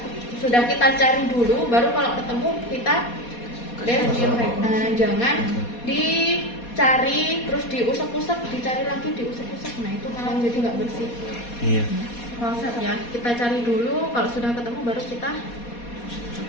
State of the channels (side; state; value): right; late; 4.2 ms